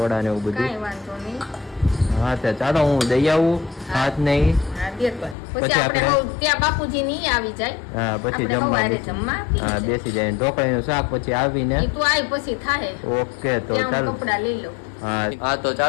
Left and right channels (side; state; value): right; drops out; at 5.4 s